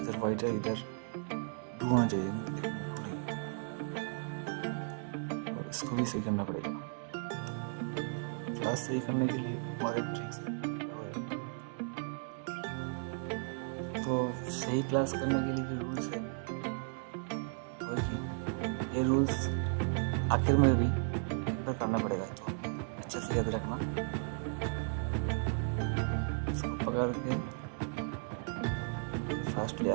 वाइट है, इधर ब्लू होना चाहिए लेकिन ब्लू नहीं। और इसको भी सही करना पड़ेगा। क्लास सही करने के लिए और एक ट्रिक्स है। तो सही क्लास करने के लिए जो रूल्स है वही, ये रूल्स आखिर में भी एक बार करना पड़ेगा। तो अच्छे से याद रखना। इसको पकड़ के फर्स्ट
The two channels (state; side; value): silent; left; 54 dB below the other